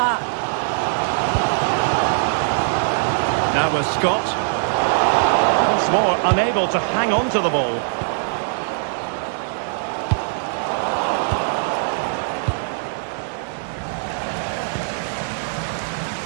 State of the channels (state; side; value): silent; left; digital silence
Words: Now with Scott. More unable to hang on to the ball.